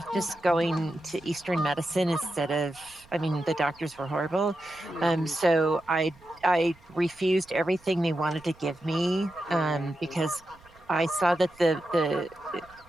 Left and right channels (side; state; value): right; noise; rumble, 27 dB below the sound